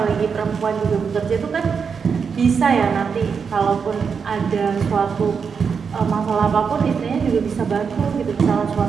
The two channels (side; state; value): left; quieter; 6.1 dB